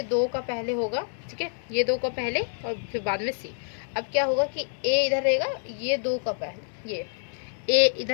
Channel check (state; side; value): silent; right; digital silence